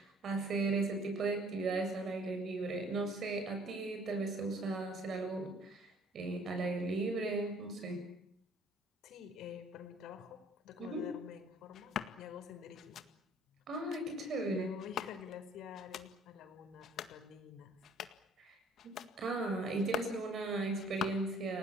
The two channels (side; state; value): both; normal; correlation 0.57